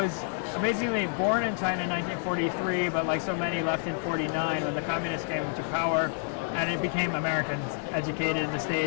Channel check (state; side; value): silent; right; 59 dB below the other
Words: amazingly born in China in 1943, but like so many left in 49 when the communists came to power, and it became Americans, educated in the